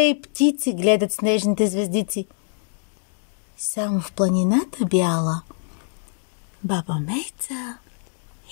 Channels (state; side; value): silent; right; digital silence